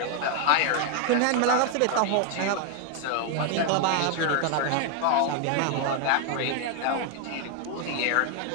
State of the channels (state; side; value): different; both; correlation 0.00